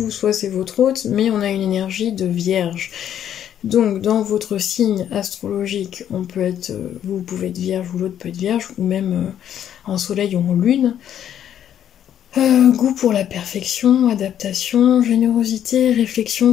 soit c'est votre hôte, mais on a une énergie de vierge. Donc, dans votre signe astrologique, vous pouvez être vierge ou l'autre peut être vierge, ou même en soleil ou en lune. Goût pour la perfection, adaptation, générosité, réflexion,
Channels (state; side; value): quieter; right; 10.1 dB